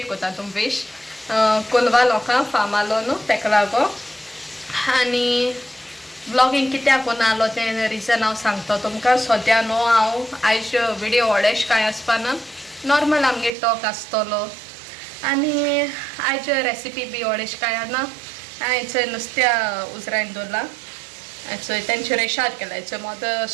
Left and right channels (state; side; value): drops out; left; at 13.5 s